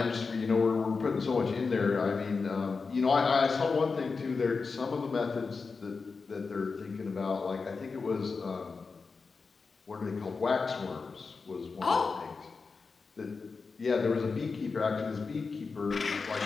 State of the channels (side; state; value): right; quieter; 4.6 dB